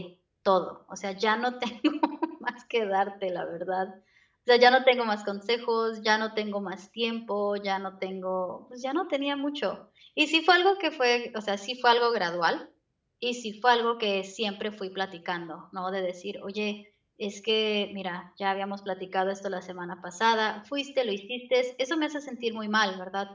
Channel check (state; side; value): identical; both; correlation 1.00